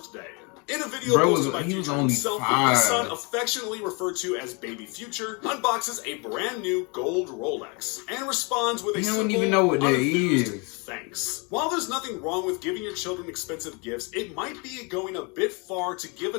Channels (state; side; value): quieter; right; 31.5 dB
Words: In a video posted by Future himself, his son, affectionately referred to as Baby Future, unboxes a brand new gold Rolex and responds with a simple, even know what that is. Thanks. While there's nothing wrong with giving your children expensive gifts, it might be going a bit far to give